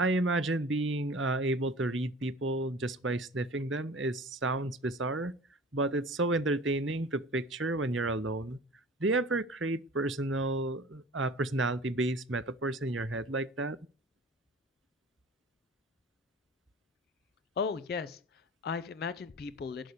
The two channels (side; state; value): both; normal; correlation 0.42